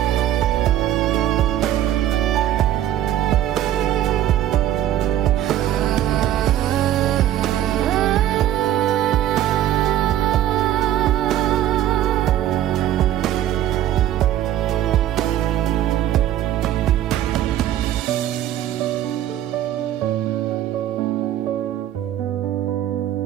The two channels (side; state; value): left; quieter; 12.2 dB